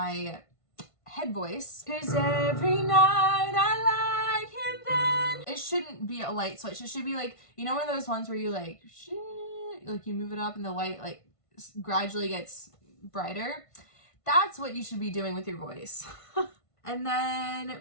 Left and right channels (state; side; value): late; right; 1.5 ms